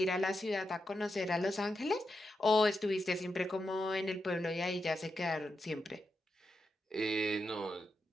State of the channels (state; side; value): normal; both; correlation 0.86